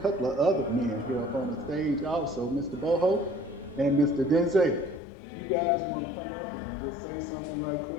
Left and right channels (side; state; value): right; drops out; at 5.0 s